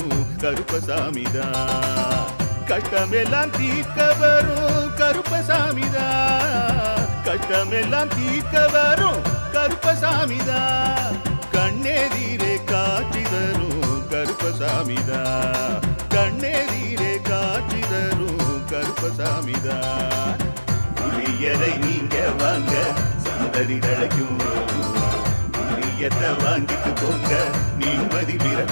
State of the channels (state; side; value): inverted; both; correlation -1.00